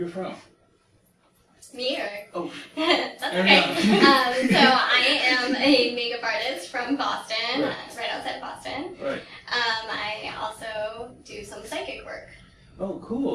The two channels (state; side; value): identical; both; correlation 1.00